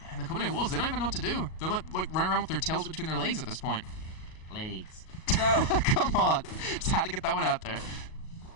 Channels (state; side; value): late; right; 38 ms